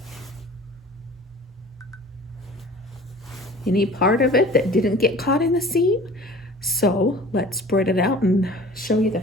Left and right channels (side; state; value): both; normal; correlation 0.45